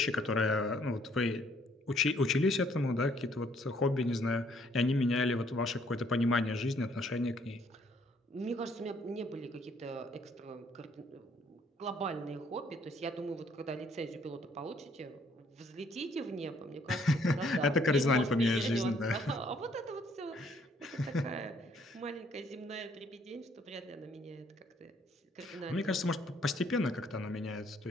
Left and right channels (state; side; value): normal; both; correlation 0.65